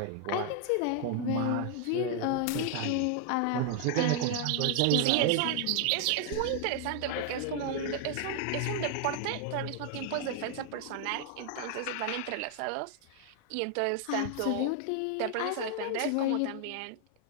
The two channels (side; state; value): both; different; correlation 0.00